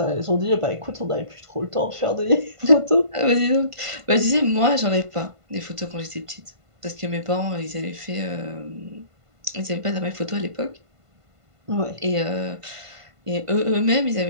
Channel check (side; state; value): left; late; 1.5 ms